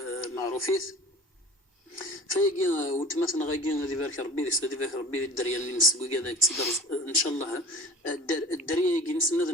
معروفيث فيجي وتمثل غايجي هذه بارك ربي هذه بارك ربي الدريه اللي نسقوا كذا تقدر ان شاء الله الدريه يجي نسند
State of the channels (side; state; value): both; normal; correlation 0.42